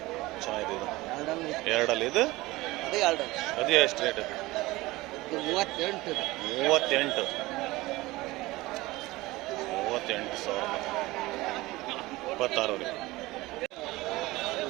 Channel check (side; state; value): left; quieter; 19.8 dB